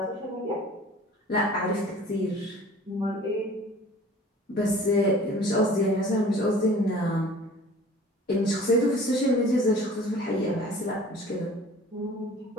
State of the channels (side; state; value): both; normal; correlation 0.47